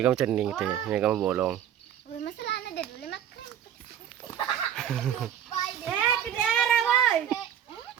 kamu cening teh, mi kamu bolong. Ke daerah boy.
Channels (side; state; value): left; quieter; 9.9 dB